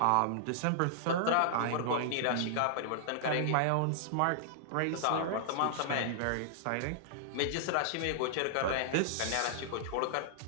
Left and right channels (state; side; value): different; both; correlation -0.01